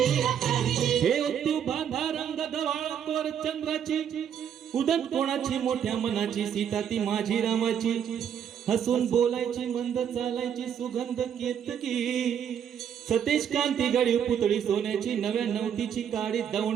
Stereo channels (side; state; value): left; quieter; 8.7 dB